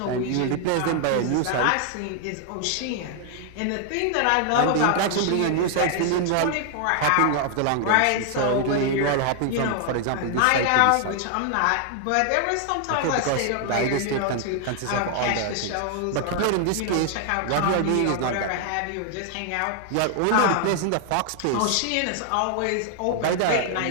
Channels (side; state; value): both; different; correlation 0.00